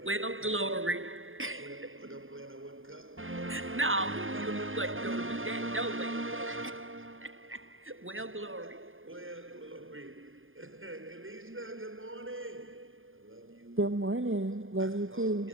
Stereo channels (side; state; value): left; late; 0.59 ms